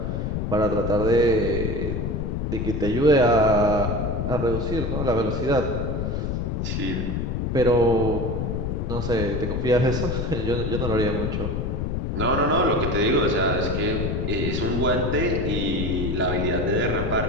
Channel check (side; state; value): left; noise; rumble, 1 dB below the sound